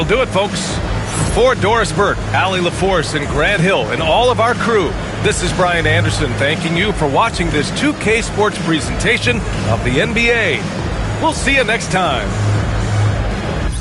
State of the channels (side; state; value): both; identical; correlation 1.00